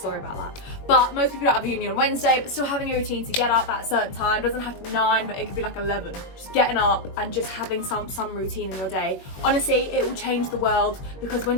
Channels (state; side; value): late; right; 21 ms